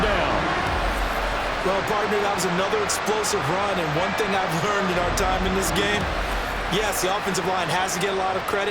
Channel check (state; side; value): identical; both; correlation 1.00